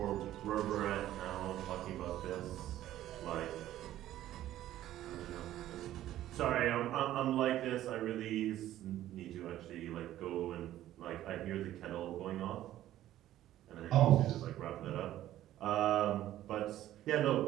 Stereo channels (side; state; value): left; quieter; 13.4 dB